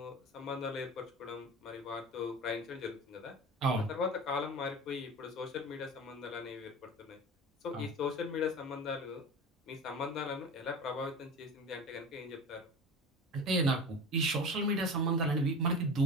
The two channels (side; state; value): both; normal; correlation 0.32